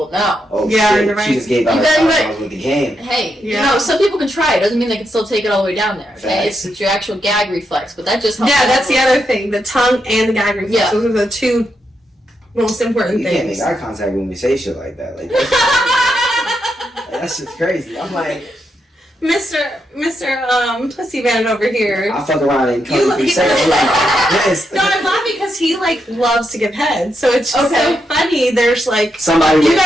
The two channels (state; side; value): normal; both; correlation 0.82